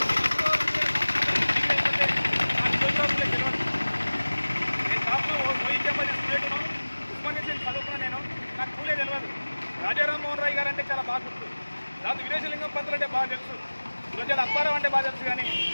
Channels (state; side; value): inverted; both; correlation -1.00